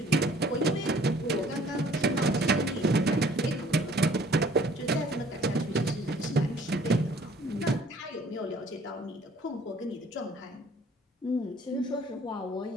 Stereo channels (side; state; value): both; normal; correlation 0.56